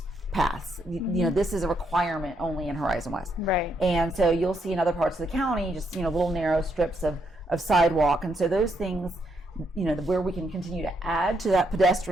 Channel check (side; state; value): both; normal; correlation 0.77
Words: paths. This is a requirement only in Horizon West. Right. And so you'll see in other parts of the county just, little narrow strips of sidewalk. And so those things, where we can continue to add to that